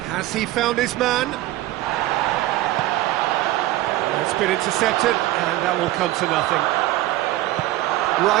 Has he found his man? It's been intercepted, and that will come to nothing.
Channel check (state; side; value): quieter; left; 16.0 dB